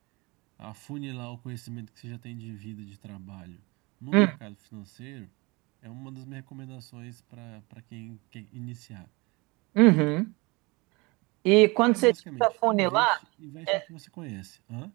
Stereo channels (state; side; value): quieter; left; 25.9 dB